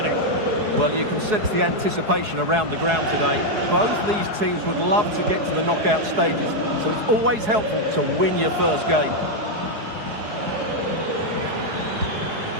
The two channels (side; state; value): left; late; 4.7 ms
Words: Well, you can sense the anticipation around the ground today. Both these teams would love to get to the knockout stages, so it's always helpful to win your first game.